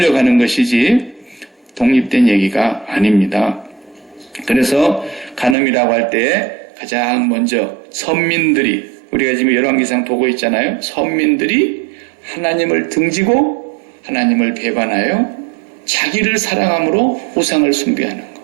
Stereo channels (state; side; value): drops out; left; at 5.6 s